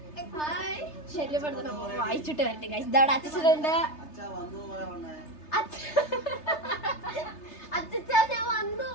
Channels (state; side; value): late; right; 3.3 ms